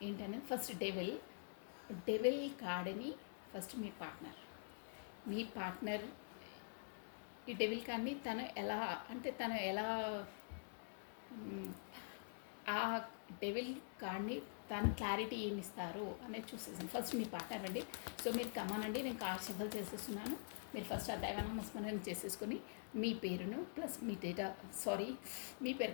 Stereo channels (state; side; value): silent; right; digital silence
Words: ఏంటనేది. ఫస్ట్ డెవిల్ కార్డ్ని ఫస్ట్ మీ పార్ట్నర్ ఈ డెవిల్ కార్డ్ని తను ఎలా ఆ డెవిల్ కార్డ్ని తను క్లారిటీ ఏమి ఇస్తారు అనేది చూసేసాను. ఫస్ట్ మీ పార్ట్నర్ అండి. సో మీరు కమానండి, నేను కార్డ్ షఫల్ చేసేస్తున్నాను. మీరు ఫస్ట్ ఆ దైవనామస్మరణం చేసేసుకొని మీ పేరును ప్లస్ మీ మీ పేరు